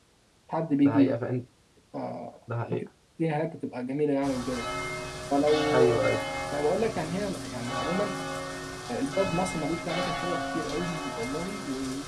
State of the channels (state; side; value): identical; both; correlation 1.00